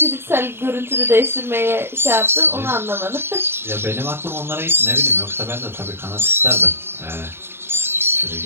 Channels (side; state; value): left; late; 0.11 ms